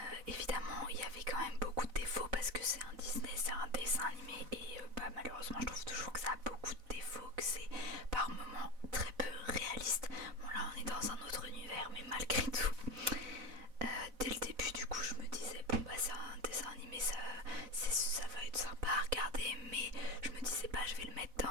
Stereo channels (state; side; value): late; left; 4.0 ms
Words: Évidemment il y avait quand même beaucoup de défauts parce que c'est un Disney, c'est un dessin animé, et malheureusement je trouve toujours que ça a beaucoup de défauts, que c'est par moments très peu réaliste. Bon là on est dans un autre univers, mais malgré tout, dès le début du coup je me disais c'est un dessin animé, ça va être sympa à regarder, mais je me disais pas je vais le mettre